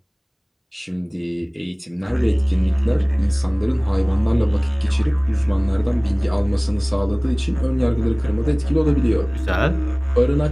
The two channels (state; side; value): identical; both; correlation 1.00